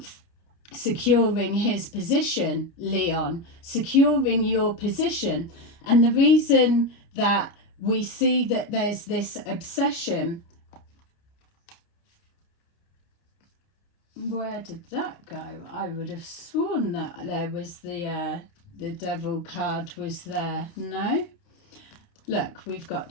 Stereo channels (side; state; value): right; late; 29 ms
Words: securing his position, Leon, securing your position. And the reason that we see that there's this obsession, where did that go? I would have sworn that there was the devil card was there. No? Look, we've got